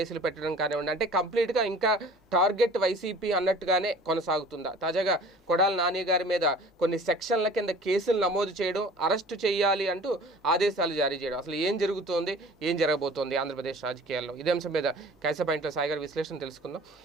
పెట్టడం కానివ్వండి, అంటే కంప్లీట్గా ఇంకా టార్గెట్ వైసీపీ అన్నట్టుగానే కొనసాగుతుందా? తాజాగా కొడాలి నాని గారి మీద కొన్ని సెక్షన్ల కింద కేసులు నమోదు చేయడం, అరెస్టు చేయాలి అంటూ ఆదేశాలు జారీ చేయడం, అసలు ఏం జరుగుతోంది, ఏం జరగబోతోంది ఆంధ్రప్రదేశ్ రాజకీయాల్లో? ఇదే అంశం మీద క్యాచ్ ద పాయింట్లో సాయి గారి విశ్లేషణ తెలుసుకుందాం.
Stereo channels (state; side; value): normal; both; correlation 0.46